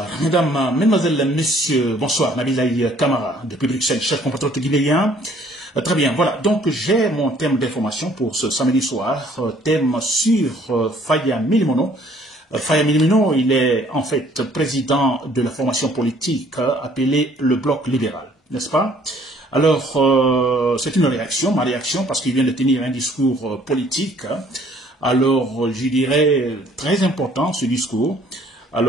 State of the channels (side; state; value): both; normal; correlation 0.60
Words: mesdames, mesdemoiselles, messieurs, bonsoir, Nabilaï Kamara, depuis Bruxelles, chef compatriote guinéen. Très bien, voilà, donc j'ai mon thème d'information pour ce samedi soir, thème sur Faya Milimono. Faya Milimono, il est en fait président de la formation politique appelée le Bloc libéral, n'est-ce pas? Alors, c'est une réaction, ma réaction, parce qu'il vient de tenir un discours politique. Alors, je dirais, très important ce discours.